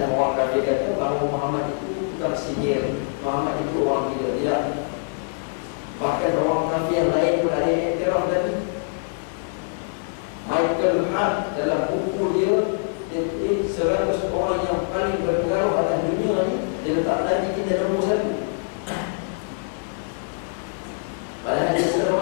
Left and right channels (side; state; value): right; silent; 55 dB below the other